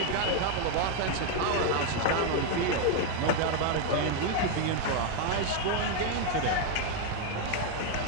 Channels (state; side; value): different; both; correlation 0.01